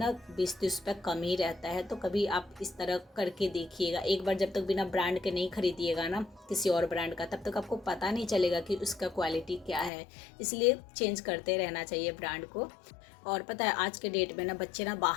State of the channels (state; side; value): drops out; right; at 9.9 s